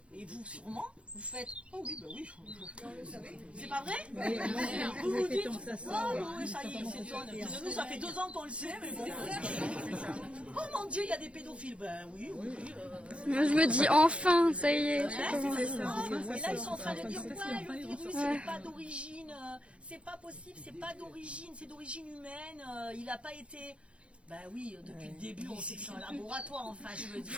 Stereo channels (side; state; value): left; late; 0.060 ms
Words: et vous sûrement, vous faites oh oui, bah oui. C'est pas vrai? Vous vous dites oh oui, ça y est, c'est John. Nous, ça fait 2 ans qu'on le sait, mais bon. Oh mon Dieu, il y a des pédophiles. Ben oui. Moi, je me dis enfin, ça y est. Et là, ils sont en train de dire ouais, le virus, il n'est pas d'origine, c'est pas possible, c'est pas d'origine, c'est d'origine humaine, il n'a pas été. Ben oui, depuis le début, on sait que c'est un laboratoire, enfin, je veux dire.